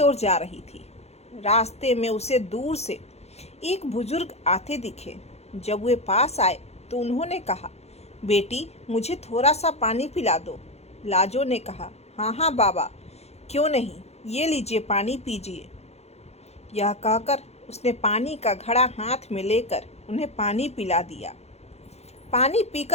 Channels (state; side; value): late; right; 0.31 ms